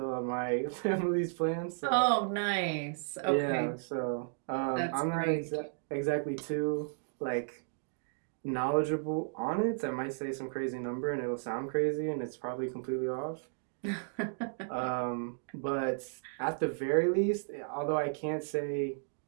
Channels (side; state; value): left; silent; digital silence